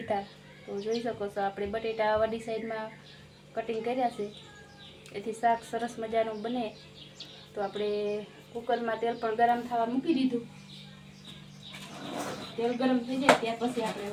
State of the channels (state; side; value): identical; both; correlation 1.00